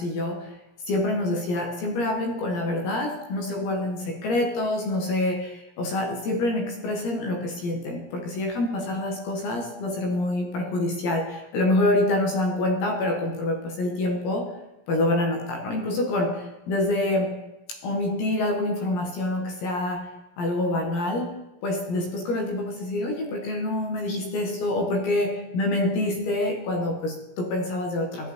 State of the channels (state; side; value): late; right; 17 ms